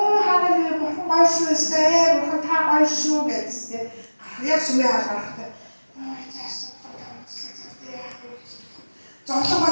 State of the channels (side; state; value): both; inverted; correlation -1.00